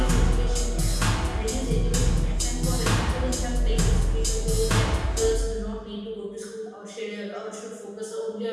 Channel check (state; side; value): identical; both; correlation 1.00